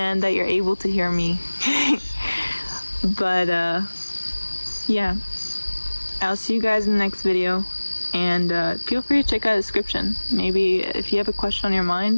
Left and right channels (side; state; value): both; inverted; correlation -1.00